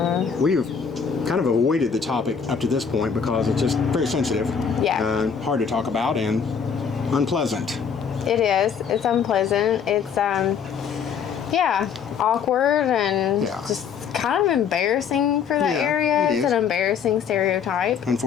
we've kind of avoided the topic up to this point because it's just very sensitive. Yeah. Hard to talk about and unpleasant. It is. It's unpleasant. It's, yeah, awkward and just kind of embarrassing for that area. It's an embarrassing stereotype.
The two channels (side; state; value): right; quieter; 6.8 dB